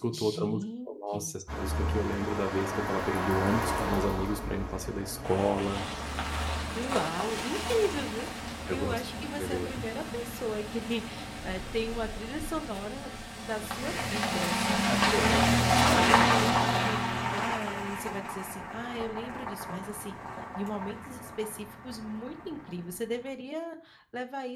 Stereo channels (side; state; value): both; identical; correlation 1.00